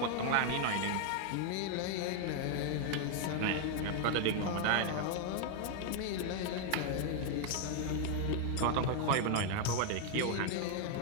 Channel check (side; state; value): both; different; correlation 0.01